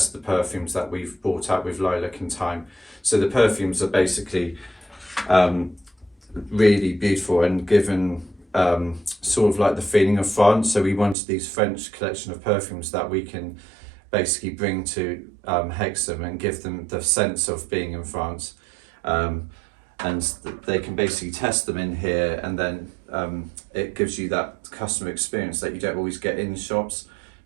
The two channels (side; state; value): left; drops out; at 11.2 s